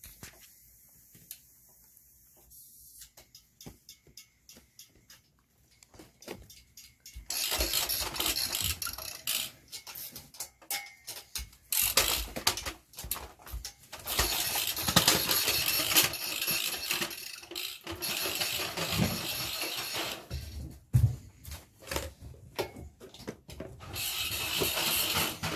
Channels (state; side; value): identical; both; correlation 1.00